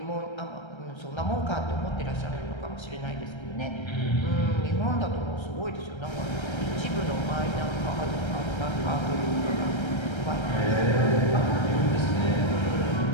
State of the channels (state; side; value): late; right; 1.3 ms